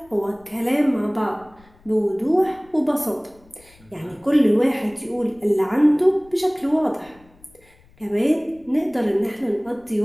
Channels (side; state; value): left; noise; rumble, 28 dB below the sound